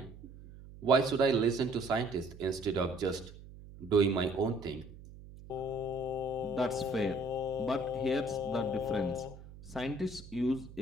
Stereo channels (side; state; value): right; noise; hum, 17 dB below the sound